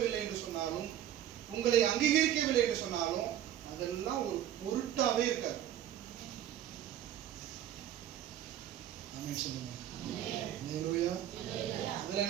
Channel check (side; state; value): left; quieter; 11.2 dB